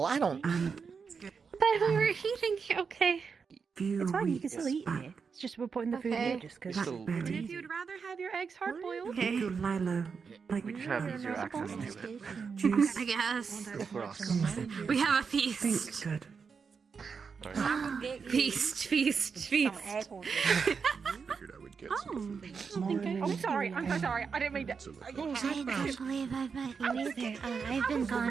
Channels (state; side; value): quieter; left; 5.7 dB